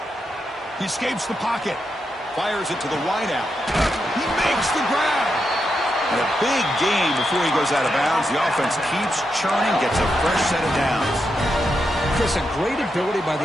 He escapes the pocket. Fires it to the wideout. He makes the grab. And a big gain before he goes out of bounds. The offense keeps churning, gets a fresh set of downs. Chris, a great ability by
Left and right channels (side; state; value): both; normal; correlation 0.85